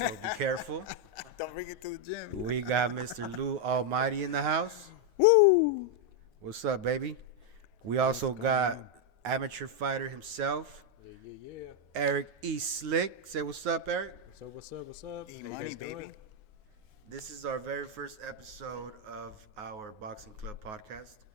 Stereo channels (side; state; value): left; late; 9.4 ms